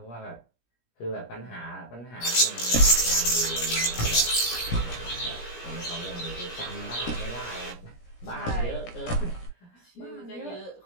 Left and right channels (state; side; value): late; right; 17 ms